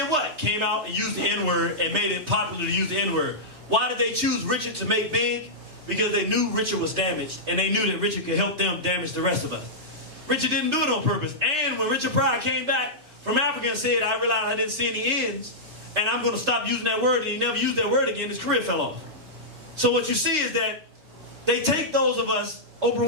what? Came out and used the N-word and made it popular to use the N-word. Why did they choose Richard to make big? Because they knew Richard was damaged, and they knew that Richard could help them damage the rest of us. Richard didn't do it on purpose. And when Richard Pryor came back from Africa and said, I realized I didn't see any ends, and I'm going to stop using that word, and he never used that word again, his career fell off. So what you see is that they take those of us,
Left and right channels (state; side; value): late; left; 3.3 ms